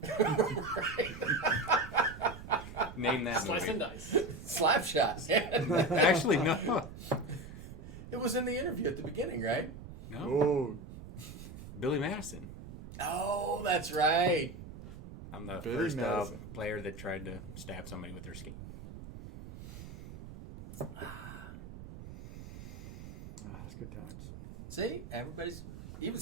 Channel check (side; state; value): right; noise; rumble, 13 dB below the sound